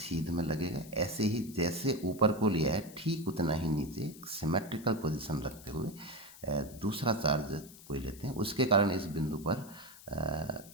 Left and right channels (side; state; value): left; noise; hiss, 19 dB below the sound